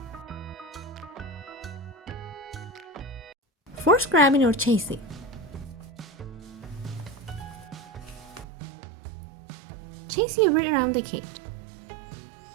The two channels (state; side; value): drops out; left; at 8.5 s